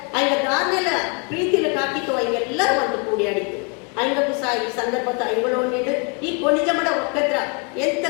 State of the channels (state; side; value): quieter; right; 35.2 dB